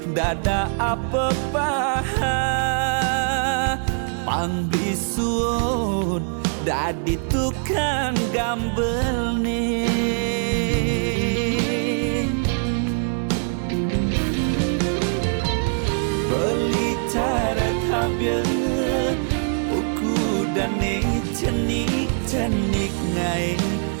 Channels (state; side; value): silent; left; 64 dB below the other